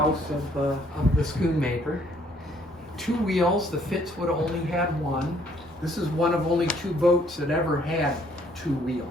of the Schoonmaker. 2 wheels. The Fitz would have only had one. This is one of only 2 boats that ever had 2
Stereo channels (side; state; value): both; normal; correlation 0.64